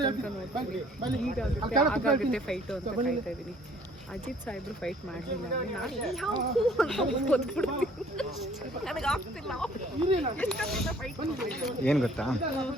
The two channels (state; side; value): normal; both; correlation 0.57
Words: ಅಜಿತ್ ಸಾಹೇಬ್ರು ಫೈಟ್ ಮಾಡಲಿಲ್ಲ. ಏನು ಗೊತ್ತಾ,